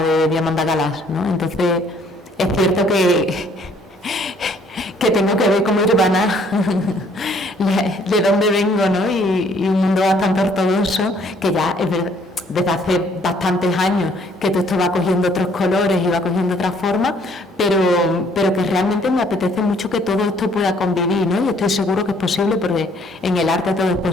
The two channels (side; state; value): both; normal; correlation 0.62